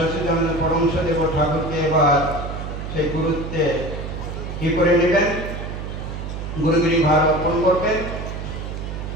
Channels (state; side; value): noise; right; hum, 7 dB below the sound